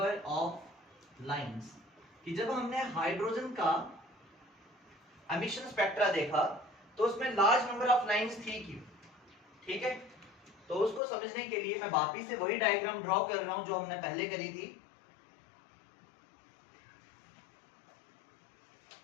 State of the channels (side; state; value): right; drops out; at 11.0 s